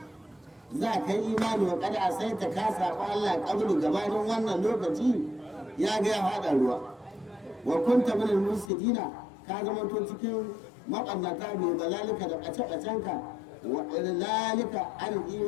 za ka yi imani wa kada sai ta kasa ba Allah kabulu gabanin wannan lokaci ya ga ya fada ruwa wa kunta minal musidina ka zama to cikin maɓannata mai balalika da ɓace-ɓacenka wa lalika an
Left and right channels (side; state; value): right; drops out; at 8.7 s